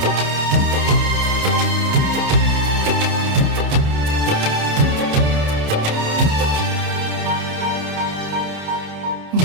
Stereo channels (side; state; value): left; late; 28 ms